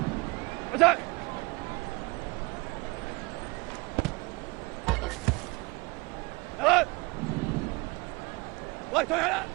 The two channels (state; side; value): quieter; left; 25.1 dB